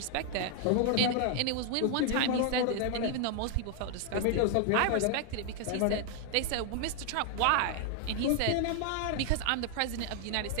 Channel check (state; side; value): different; both; correlation 0.00